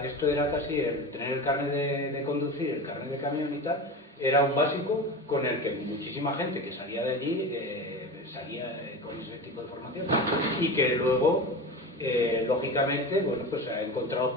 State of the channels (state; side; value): normal; both; correlation 0.28